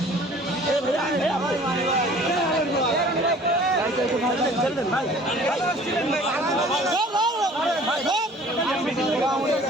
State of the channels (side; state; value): both; normal; correlation 0.50